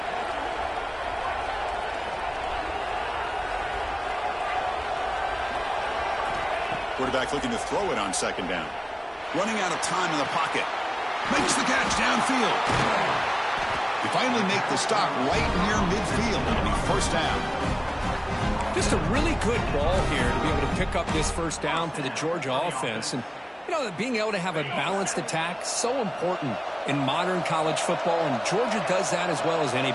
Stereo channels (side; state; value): both; identical; correlation 1.00